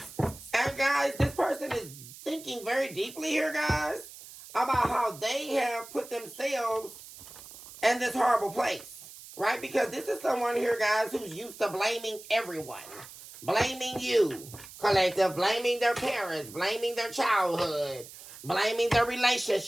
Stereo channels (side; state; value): right; noise; hiss, 16 dB below the sound